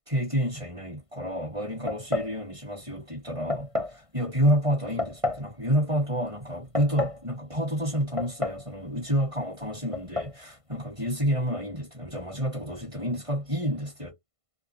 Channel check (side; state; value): left; late; 1.5 ms